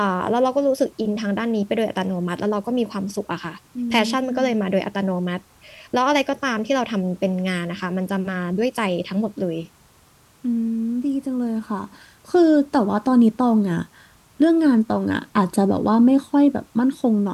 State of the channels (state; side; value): identical; both; correlation 1.00